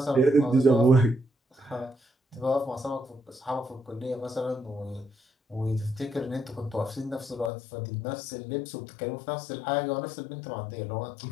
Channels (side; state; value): right; drops out; at 7.5 s